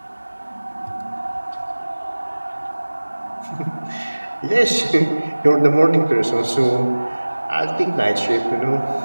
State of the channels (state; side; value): inverted; both; correlation -1.00